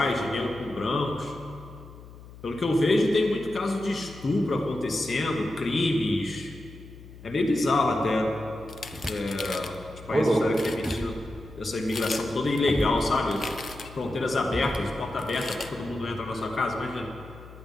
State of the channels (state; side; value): noise; left; hum, 17 dB below the sound